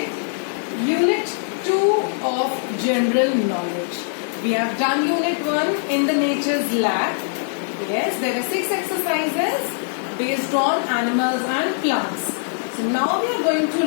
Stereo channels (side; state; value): right; silent; digital silence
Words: Unit 2 of General Knowledge. We have done Unit 1 in the Nature's Lab. Yes, there are 6 exercises based on animals and plants. So now we are going to